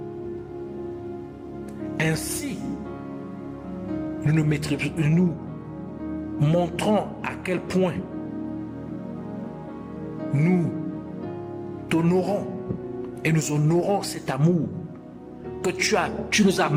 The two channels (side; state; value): both; identical; correlation 1.00